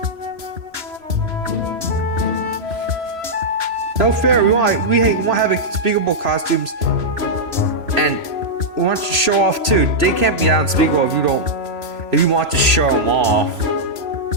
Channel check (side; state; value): left; late; 3.0 ms